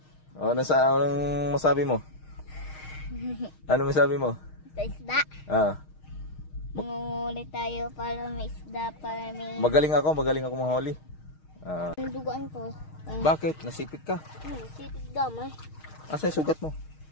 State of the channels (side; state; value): right; late; 6.4 ms